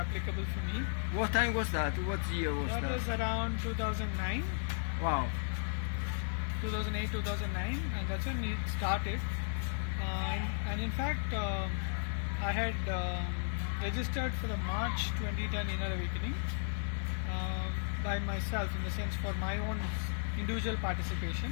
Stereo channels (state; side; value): silent; right; digital silence